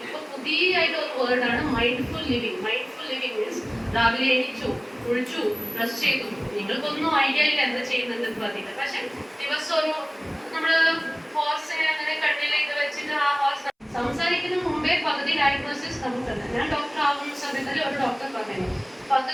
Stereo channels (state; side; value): identical; both; correlation 1.00